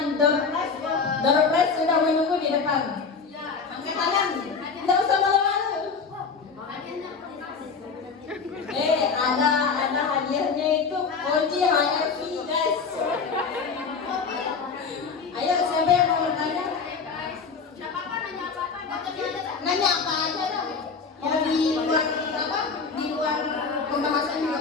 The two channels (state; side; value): quieter; right; 5.2 dB